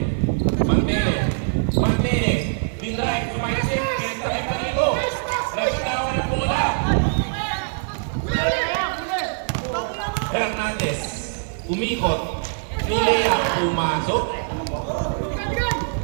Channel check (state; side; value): silent; left; digital silence